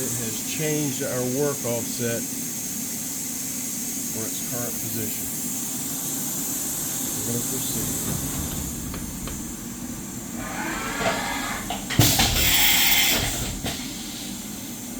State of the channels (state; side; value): identical; both; correlation 1.00